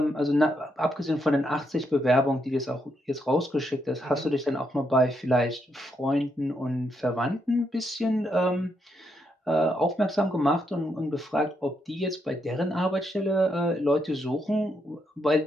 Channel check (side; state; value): both; normal; correlation 0.79